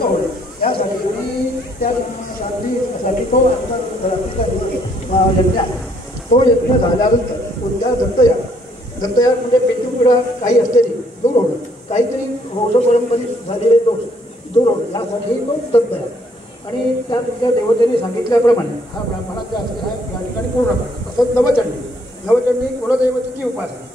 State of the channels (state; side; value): normal; both; correlation 0.67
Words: होईल यासाठी मी त्या शांतीसाठी तो यज्ञ तो यज्ञ झाल्यानंतर कोणत्या दत्तयाग म्हणजे पितृपिढा काही असलेली दूर होणं, काहीतरी वंशपरंपरित झालेले दोष दूर होणं यासाठी तो दत्तयाग आणि त्या तुमच्या देवतेने सांगितल्याप्रमाणे हा ब्राह्मणाचा असलेला या ठिकाणी पूर्ण करतो. तसंच नवचंडी कुलदैवतेची